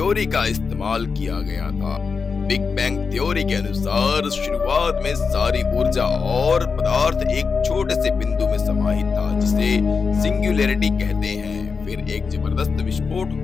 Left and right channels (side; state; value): right; quieter; 5.2 dB